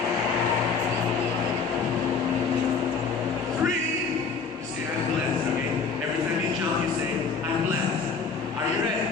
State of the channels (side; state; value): right; quieter; 5.2 dB